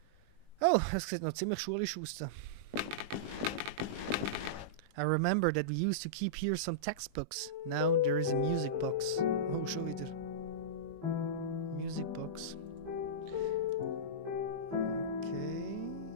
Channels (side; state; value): left; late; 20 ms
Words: Oh, das sieht noch ziemlich schulisch aus. I remember that we used to keep here some textbooks. Now there is a music box. Oh, schon wieder. Music box. Okay.